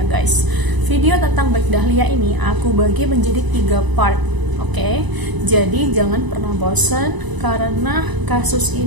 ya guys. Video tentang Black Dahlia ini aku bagi menjadi 3 part. Oke, jadi jangan pernah bosan karena kasus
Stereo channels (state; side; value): late; left; 1.0 ms